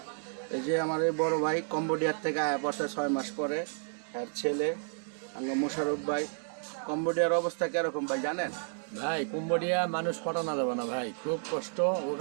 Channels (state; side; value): silent; left; 57 dB below the other